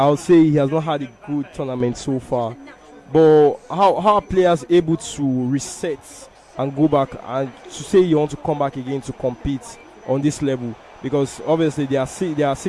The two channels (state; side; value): identical; both; correlation 1.00